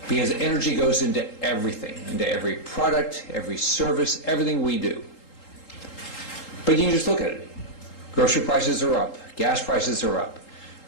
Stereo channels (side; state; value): right; late; 3.8 ms